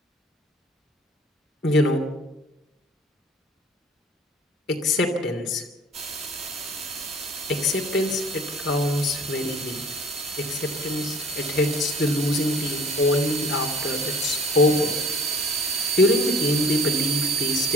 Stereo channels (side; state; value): both; normal; correlation 0.50